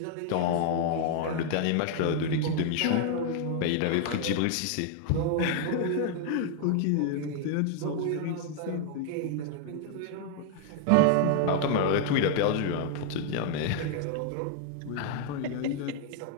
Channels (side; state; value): both; different; correlation 0.00